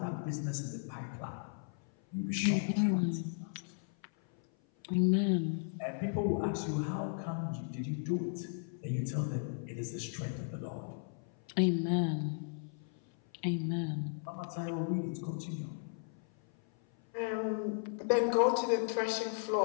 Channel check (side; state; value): right; silent; 54 dB below the other